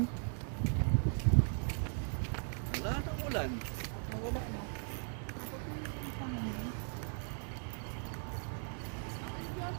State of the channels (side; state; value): left; silent; 52 dB below the other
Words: Wala nang ulan.